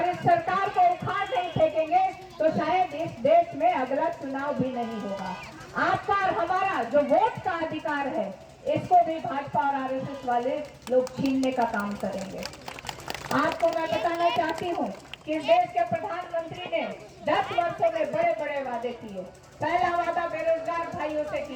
इस सरकार को उखाड़ नहीं फेंकेंगे तो शायद इस देश में अगला चुनाव भी नहीं होगा। आपका और हमारा जो वोट का अधिकार है इसको भी भाजपा और आरएसएस वाले लोग छीनने का काम करेंगे। आपको मैं बताना चाहती हूँ कि इस देश के प्रधानमंत्री ने 10 वर्षों में बड़े बड़े वादे किए। पहला वादा बेरोजगार भाइयों से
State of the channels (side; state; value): both; identical; correlation 1.00